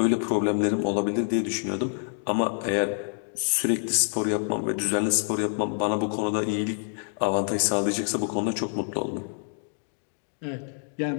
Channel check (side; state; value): right; silent; digital silence